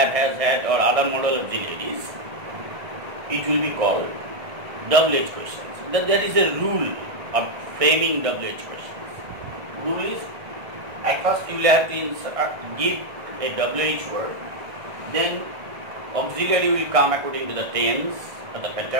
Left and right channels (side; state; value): left; late; 1.6 ms